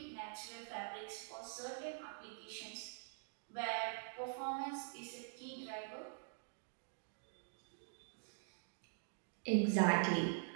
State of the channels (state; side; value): silent; left; digital silence